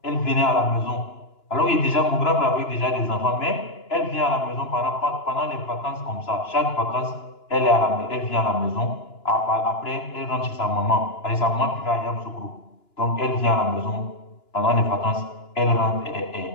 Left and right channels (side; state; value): right; late; 2.9 ms